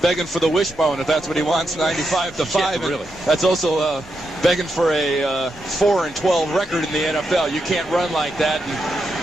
begging for the wishbone, if that's what he wants, 95-to-5. Yeah, really. That's also begging for a 4-12 record in the NFL. You can't run like that. And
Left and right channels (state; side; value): normal; both; correlation 0.84